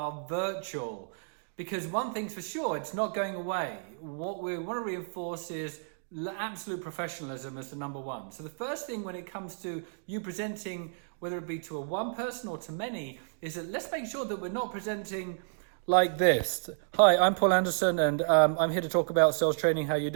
virtual? Because one thing's for sure, it's not going away. What we want to reinforce is absolute professionalism as the number one. So the first thing when it comes to you presenting, whether it be to a one person or to many, is that let's make sure that we're not presenting like this. Hi, I'm Paul Anderson and I'm here to talk about sales training. How you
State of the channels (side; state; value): left; silent; digital silence